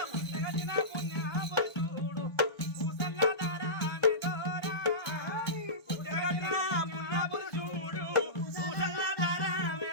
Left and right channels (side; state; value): right; late; 1.5 ms